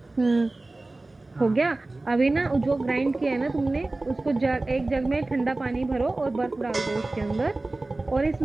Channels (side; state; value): left; quieter; 3.0 dB